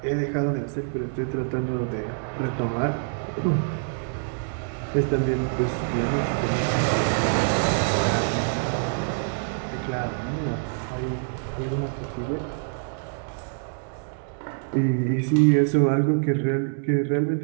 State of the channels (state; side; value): silent; left; 61 dB below the other